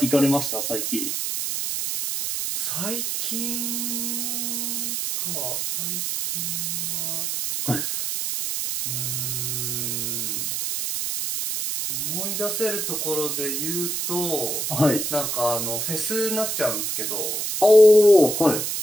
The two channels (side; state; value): right; noise; hiss, 1 dB below the sound